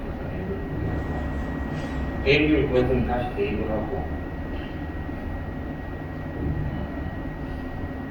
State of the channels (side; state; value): both; identical; correlation 1.00